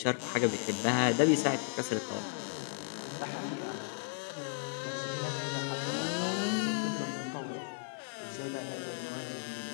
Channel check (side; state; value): right; silent; digital silence